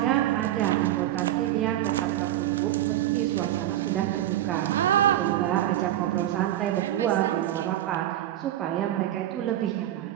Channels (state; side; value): quieter; left; 13.2 dB